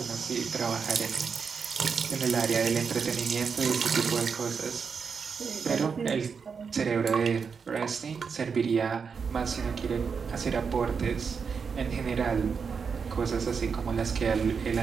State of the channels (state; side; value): quieter; left; 5.9 dB